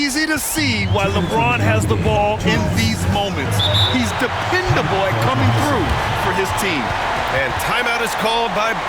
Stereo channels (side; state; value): both; identical; correlation 1.00